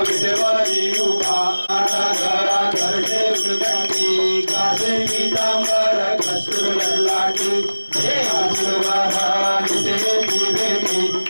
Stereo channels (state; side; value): inverted; both; correlation -1.00